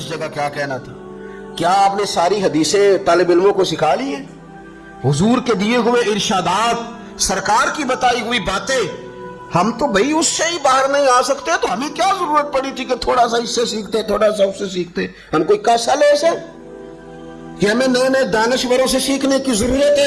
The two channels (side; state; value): both; identical; correlation 1.00